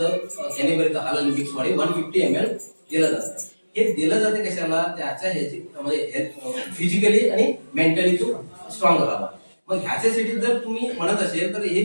कॅनिबरीचं हालन मिक्स मध्ये 150 ml दिलं जातं. हे दिलं जाते कशाला त्याच्या ह्याची म्हणजे फिजिकली आणि मेंटली तो स्ट्रॉंग राहावा. मग ह्याच्यासाठी जर तुम्ही म्हणत असेल तर हे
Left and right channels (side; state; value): both; inverted; correlation -1.00